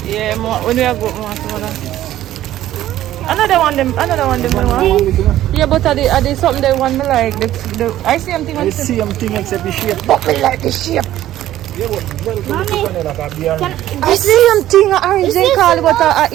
Yeah, more. When we are good, more some of them. Another one them. Yeah, but are they something they want me like? I see something on It's same thing except the shape. but me like the shape. Yeah, but I see something orange they call it, but I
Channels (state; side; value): quieter; left; 13.4 dB